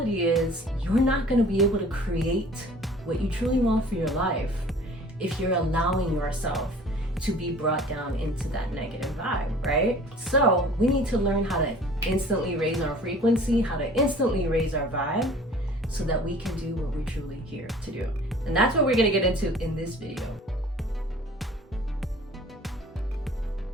is you're not going to be able to create what you truly want for your life if you're allowing yourself to be brought down into that negative vibe, right? So we need to learn how to instantly raise our frequency, how to instantly raise our vibe so that we can do what we're truly here to do. And that's what we're going to get into in this video.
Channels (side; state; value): both; normal; correlation 0.48